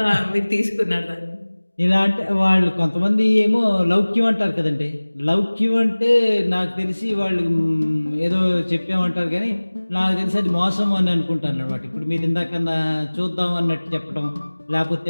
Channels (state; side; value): inverted; both; correlation -1.00